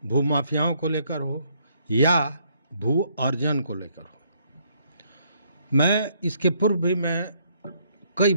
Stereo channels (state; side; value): inverted; both; correlation -0.69